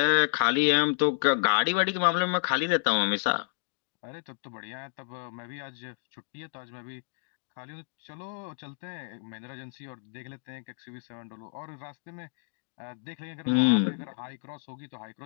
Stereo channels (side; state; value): right; silent; digital silence